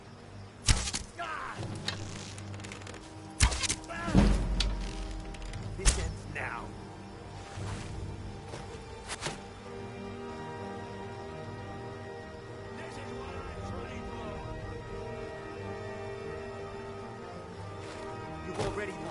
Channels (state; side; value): identical; both; correlation 1.00